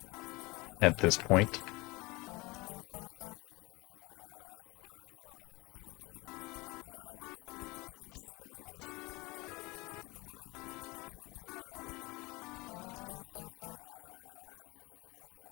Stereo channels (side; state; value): right; quieter; 23.5 dB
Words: At this point.